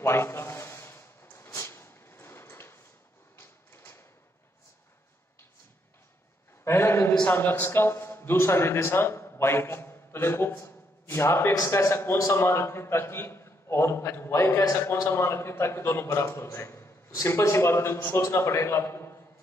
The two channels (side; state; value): both; normal; correlation 0.74